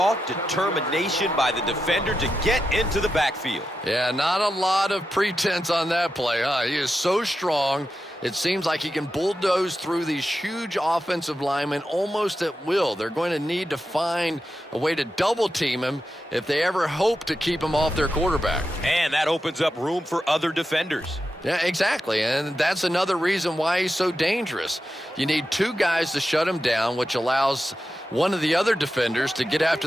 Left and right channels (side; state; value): both; normal; correlation 0.89